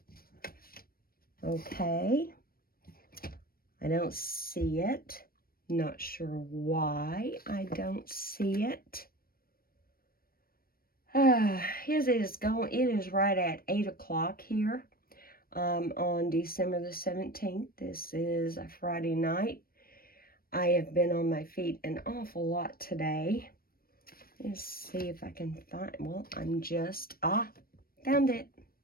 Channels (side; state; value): right; late; 0.43 ms